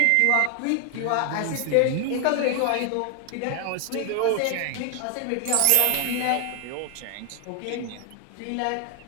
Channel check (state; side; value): different; both; correlation 0.00